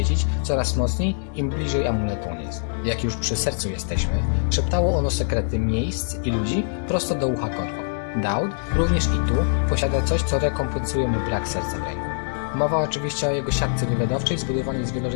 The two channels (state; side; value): silent; right; digital silence